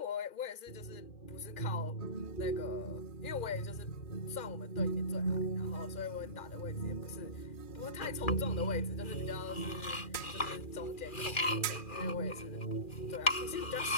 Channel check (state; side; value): late; right; 2.4 ms